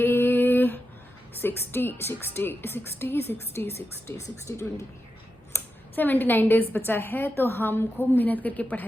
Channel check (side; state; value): both; normal; correlation 0.88